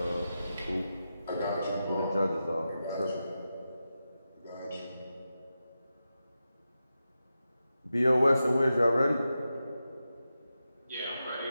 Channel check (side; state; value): both; inverted; correlation -0.90